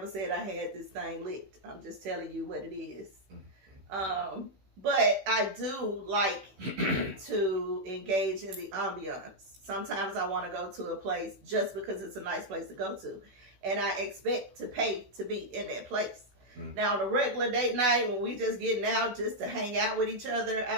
said I had this thing licked. I'm just telling you what it is. Mm-hmm. But I do like to engage in the ambiance. Sometimes I want to go to a place just because it's a nice place to go to. And I expect to pay to be in that place. Mm. Now, on a regular date night, when we just getting out just to hang out with each other, I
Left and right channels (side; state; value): left; late; 16 ms